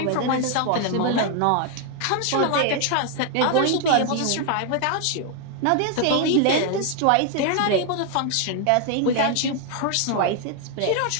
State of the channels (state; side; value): different; both; correlation 0.00